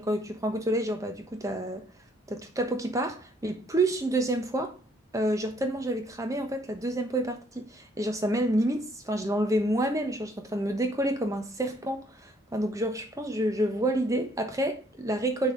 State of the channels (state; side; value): normal; both; correlation 0.65